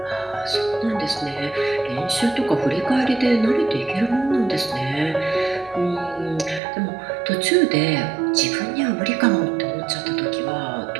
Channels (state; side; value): drops out; left; at 6.6 s